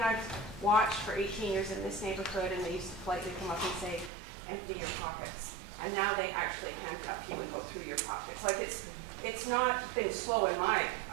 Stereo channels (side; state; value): left; drops out; at 4.1 s